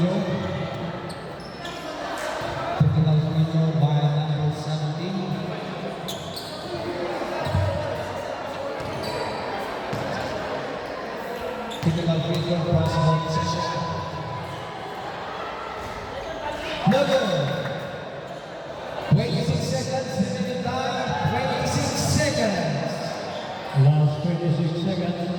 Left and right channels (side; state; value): both; identical; correlation 1.00